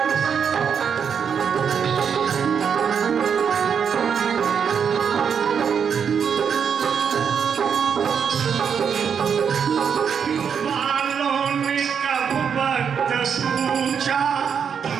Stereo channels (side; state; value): left; quieter; 7.1 dB